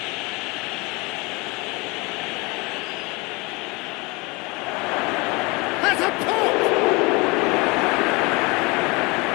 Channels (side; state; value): right; quieter; 26.2 dB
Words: Has a pop!